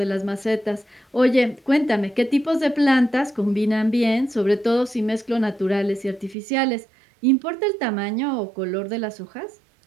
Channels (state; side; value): drops out; left; at 6.4 s